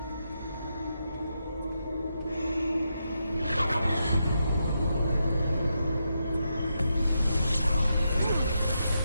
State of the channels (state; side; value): inverted; both; correlation -0.84